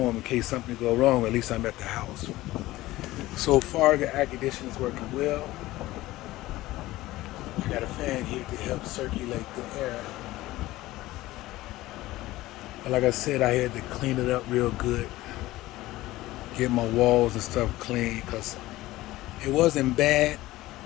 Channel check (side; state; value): right; quieter; 17.3 dB